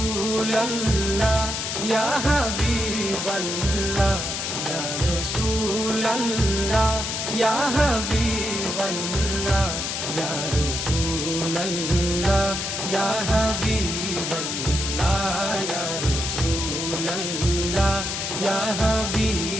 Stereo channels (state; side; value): noise; left; hiss, 3 dB below the sound